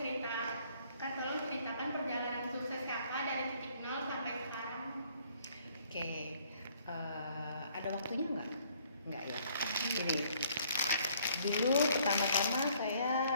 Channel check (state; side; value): inverted; both; correlation -0.62